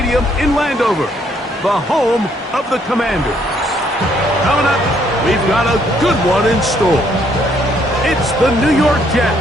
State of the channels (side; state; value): both; normal; correlation 0.68